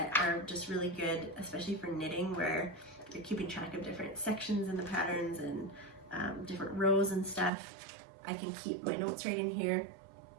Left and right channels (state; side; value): drops out; left; at 7.5 s